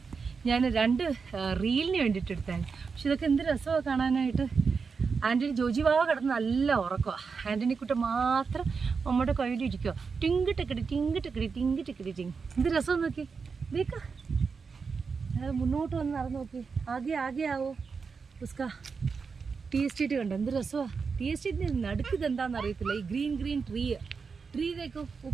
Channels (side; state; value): left; quieter; 5.3 dB